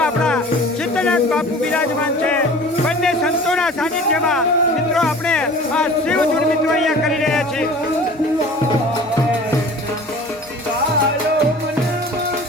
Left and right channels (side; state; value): both; normal; correlation 0.43